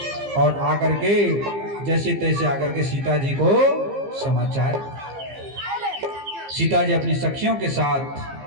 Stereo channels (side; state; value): left; late; 15 ms